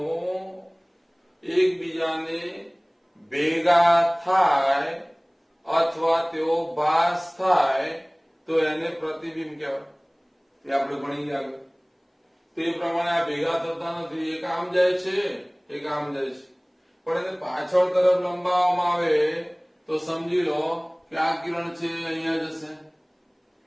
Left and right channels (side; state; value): both; identical; correlation 1.00